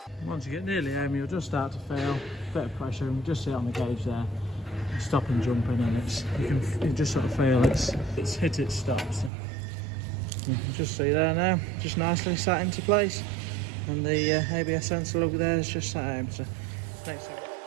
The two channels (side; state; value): left; drops out; at 9.3 s